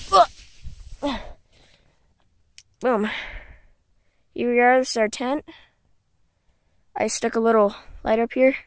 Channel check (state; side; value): identical; both; correlation 1.00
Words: Boom. Here is our tent. I stuck a little light up here.